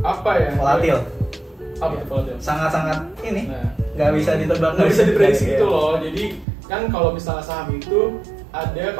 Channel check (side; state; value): left; drops out; at 6.5 s